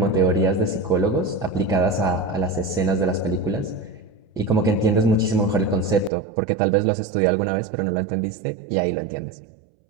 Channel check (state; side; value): drops out; left; at 6.1 s